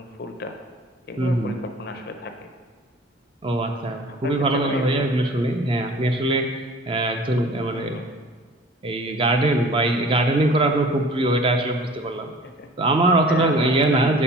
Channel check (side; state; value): both; normal; correlation 0.46